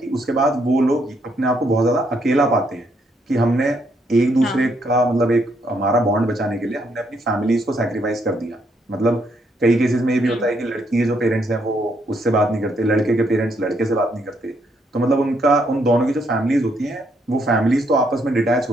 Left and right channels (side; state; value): both; normal; correlation 0.73